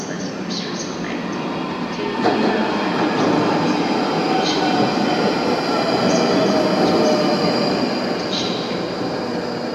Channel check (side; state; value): both; identical; correlation 1.00